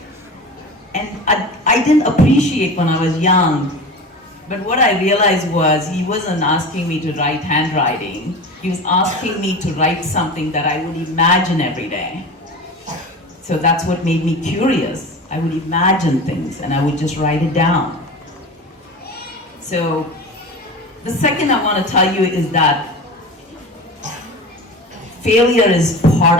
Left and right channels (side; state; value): both; normal; correlation 0.31